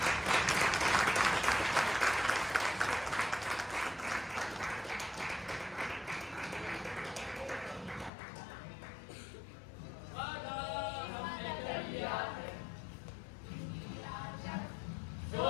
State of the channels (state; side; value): drops out; right; at 8.1 s